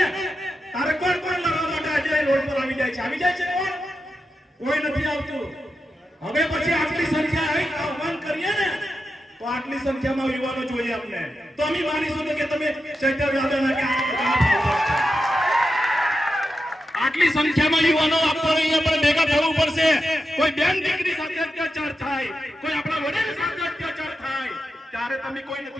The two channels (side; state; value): both; normal; correlation 0.89